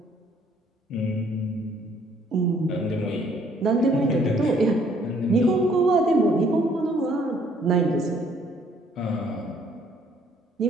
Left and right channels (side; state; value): both; normal; correlation 0.63